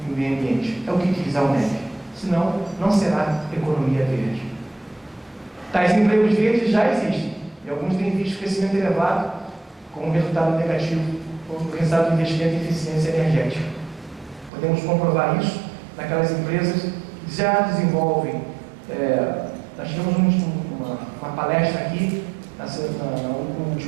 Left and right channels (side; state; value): left; drops out; at 14.5 s